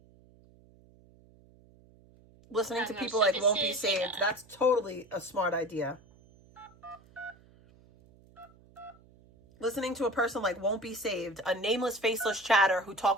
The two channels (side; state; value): right; noise; hum, 27 dB below the sound